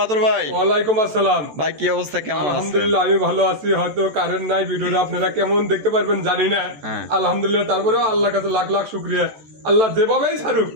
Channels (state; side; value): late; left; 14 ms